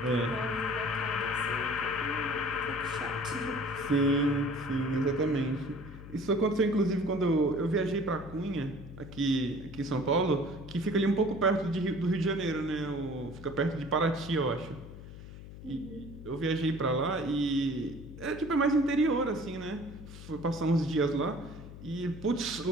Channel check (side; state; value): left; noise; hum, 14 dB below the sound